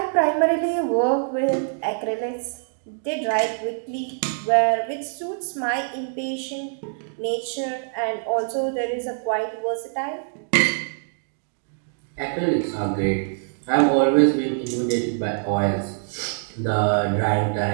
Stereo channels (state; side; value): silent; left; digital silence